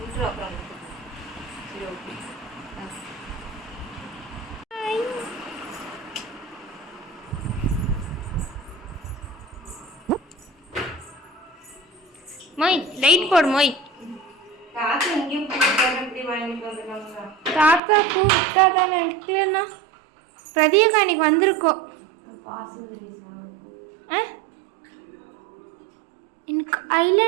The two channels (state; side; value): drops out; left; at 17.8 s